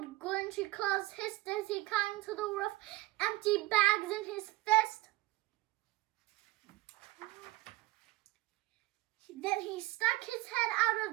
Grinchy Claus hissed as he climbed to the roof, empty bags in his fist. Then he stuck his head out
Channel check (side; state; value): left; quieter; 19.1 dB